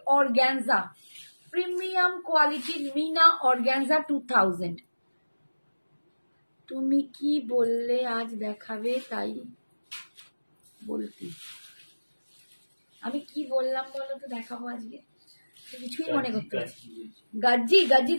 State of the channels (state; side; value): inverted; both; correlation -1.00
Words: অর্গ্যানজা, প্রিমিয়াম কোয়ালিটির মিনা অর্গ্যানজা 2000। তুমি কি বললে আজ দেখাবে, তাই বলতে আমি কি বললাম বলো তো, দেখাবো আজকে, কিছুই মনে করতে পারছি। গাজ্জি, গাজ্জি